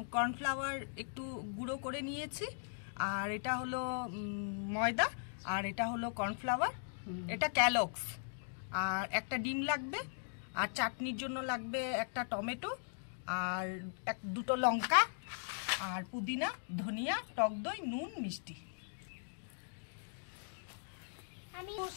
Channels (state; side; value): silent; right; digital silence